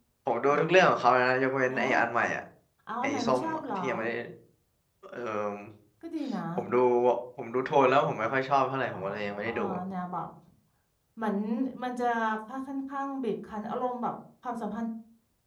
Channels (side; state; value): both; identical; correlation 1.00